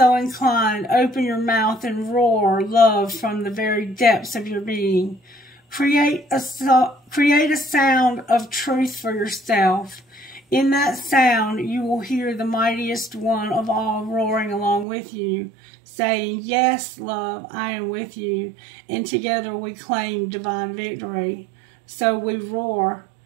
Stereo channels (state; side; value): drops out; left; at 14.9 s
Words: inclined, open your mouth and roar love from the very depths of your being. Create a sound of truth for yourself. In that sound, you will hear the mightiest one of all roaring along with you, saying, "Yes, love, I am with you," and together we claim divine victory. So we roar.